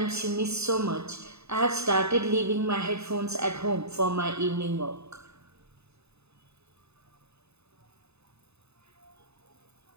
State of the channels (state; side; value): late; left; 0.80 ms